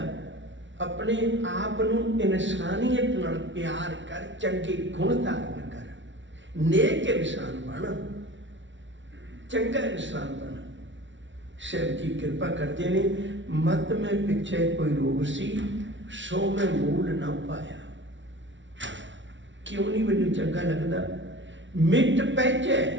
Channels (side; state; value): left; late; 0.55 ms